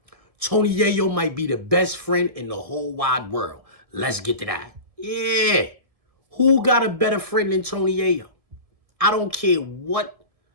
Tony Yayo might be the best friend in the whole wide world. Let's get to that. Yeah. Who got a better friend than Tony Yayo? I don't care what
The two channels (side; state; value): left; late; 1.7 ms